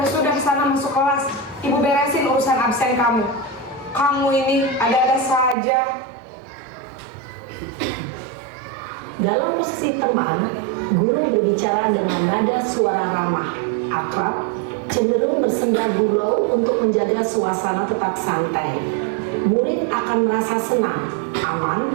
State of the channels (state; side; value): drops out; left; at 5.6 s